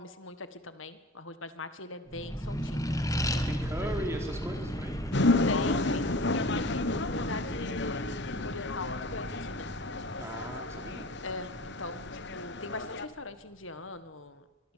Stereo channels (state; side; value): normal; both; correlation 0.40